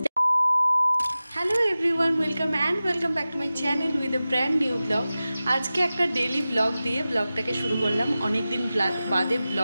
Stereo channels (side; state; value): both; inverted; correlation -0.95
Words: Hello everyone, welcome back to my channel with a brand new blog. আজকে একটা ডেলি ব্লগ দিয়ে ব্লগটাকে শুরু করলাম। অনেক দিন বাদে